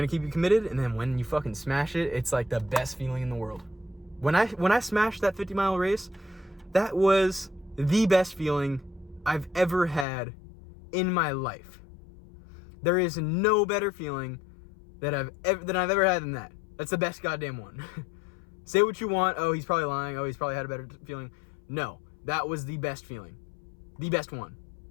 to keep you committed, and then when you fucking smash it, it's like the best feeling in the world. When I smashed that 50-mile race, that was the best feeling I've ever had in my life. There is no better feeling that I've ever had than that. That's the best goddamn one. Say what you want. Oh, he's probably lying. Oh, he's probably had a better feeling. No, that was the best feeling. The best one.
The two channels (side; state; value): right; drops out; at 10.1 s